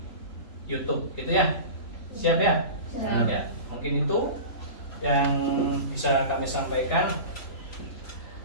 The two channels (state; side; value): late; right; 3.4 ms